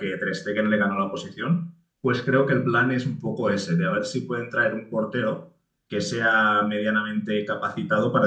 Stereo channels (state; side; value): identical; both; correlation 1.00